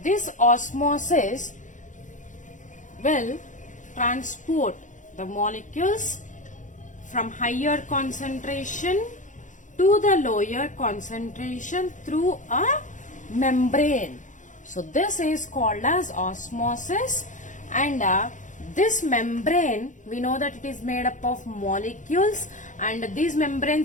osmosis will transport the molecules from higher concentration to the lower concentration through a membrane. So this is called as osmosis, and this membrane, we know that it is made up of molecules, and these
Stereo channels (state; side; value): late; right; 0.37 ms